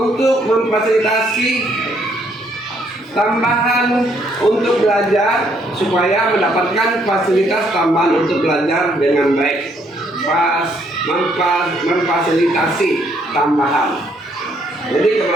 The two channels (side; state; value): both; normal; correlation 0.69